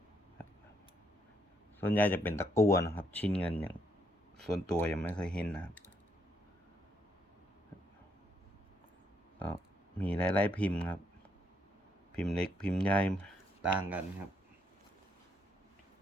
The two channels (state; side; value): normal; both; correlation 0.74